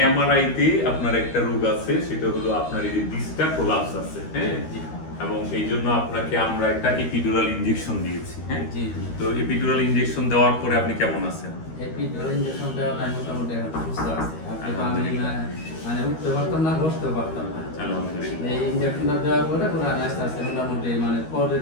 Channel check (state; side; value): late; right; 13 ms